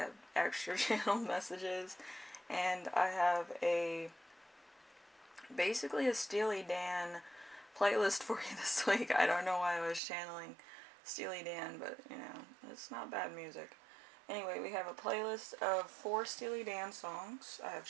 extra channel messages, and I have basically a Steely Dan playlist for you this week. I don't know why I was channeling Steely Dan, but it's not bad music. Anyway, we have a playlist of 4 Steely Dan songs. I have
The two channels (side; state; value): left; drops out; at 10.0 s